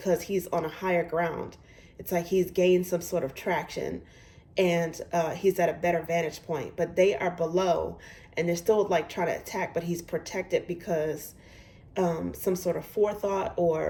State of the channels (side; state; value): both; identical; correlation 1.00